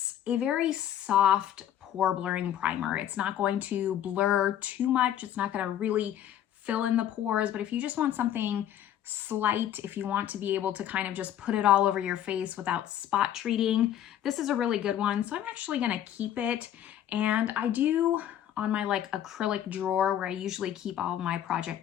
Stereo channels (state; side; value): quieter; right; 11.0 dB